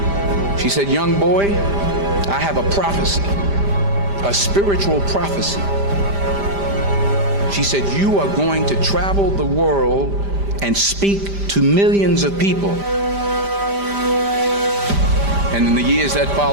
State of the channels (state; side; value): late; left; 5.0 ms